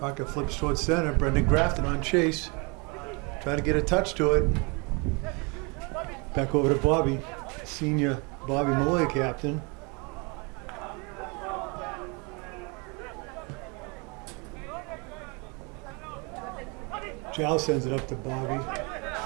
flips towards center. Brendan Grafton on chase, trying to get a touch to it. Back over to Bobby, senior Bobby Malloy, captain. Jal sends it up to Bobby.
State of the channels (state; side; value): quieter; left; 30.8 dB